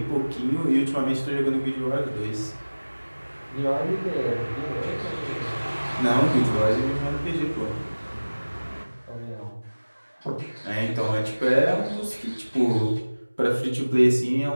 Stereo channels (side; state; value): both; inverted; correlation -1.00